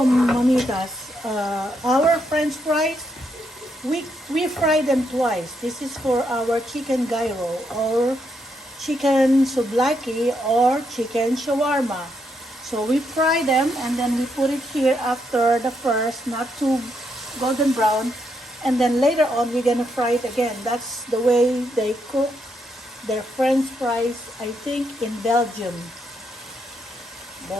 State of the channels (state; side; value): normal; both; correlation 0.78